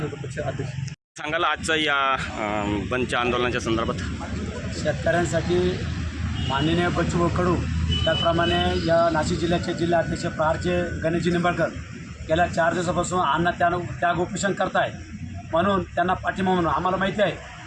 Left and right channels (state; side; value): identical; both; correlation 1.00